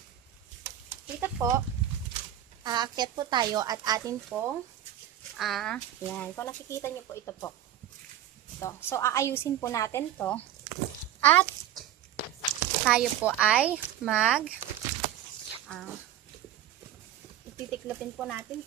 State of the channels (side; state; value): left; quieter; 11.6 dB